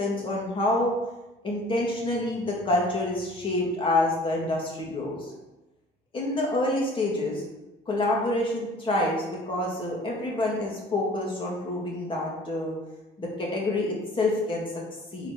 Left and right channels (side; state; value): both; normal; correlation 0.49